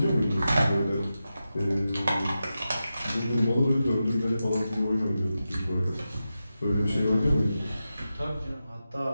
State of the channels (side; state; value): both; inverted; correlation -0.91